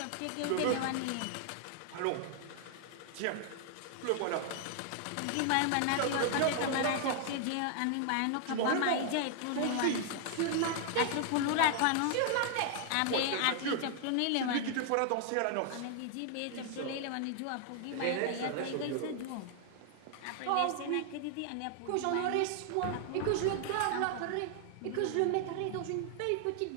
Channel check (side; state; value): both; different; correlation 0.00